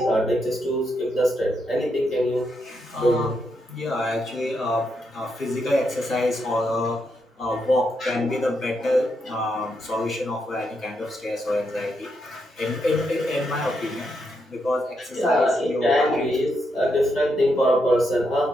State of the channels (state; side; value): normal; both; correlation 0.81